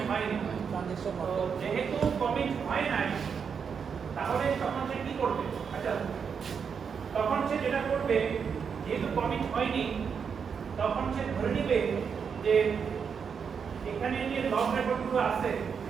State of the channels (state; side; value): quieter; left; 6.5 dB